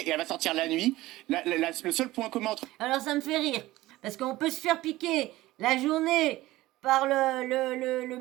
elle va sortir la nuit. Le seul point commun entre Alors ça me fait rire, parce qu'on peut se faire piquer la journée par le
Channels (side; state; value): left; quieter; 17.5 dB